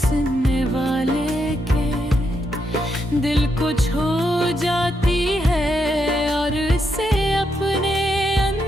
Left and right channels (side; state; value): both; normal; correlation 0.81